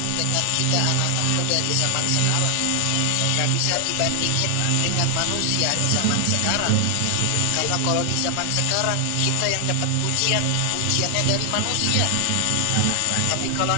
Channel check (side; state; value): both; different; correlation 0.00